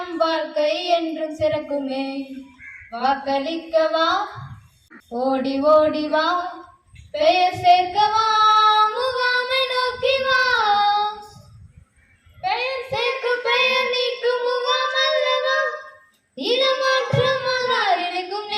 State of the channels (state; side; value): identical; both; correlation 1.00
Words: வாழ்க்கை என்றும் சிறக்குமே. வாக்களிக்கவா, ஓடி ஓடி வா, பெயர் சேர்க்கவா, முகாமை நோக்கி வா. பெயர் சேர்க்க பெயர் நீக்கும் முகாம் அல்லவா, இடமாற்றம் இணைக்கும்